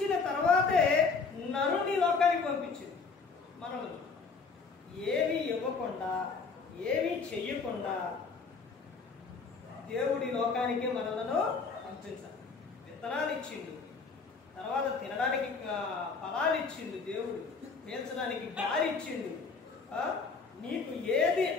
తర్వాతే నరుని లోకానికి పంపించింది. మనల్ని ఏమీ ఇవ్వకుండా, ఏమీ చెయ్యకుండా దేవుడి లోకానికి మనలను పంపించాలి. విత్తనాలు ఇచ్చిండు, తర్వాత తినడానికి ఫలాలు ఇచ్చిండు, దేవుడు పీల్చడానికి గాలి ఇచ్చిండు. నీకు ఏది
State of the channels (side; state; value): right; quieter; 4.8 dB